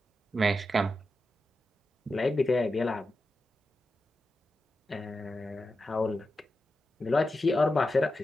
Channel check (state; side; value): normal; both; correlation 0.90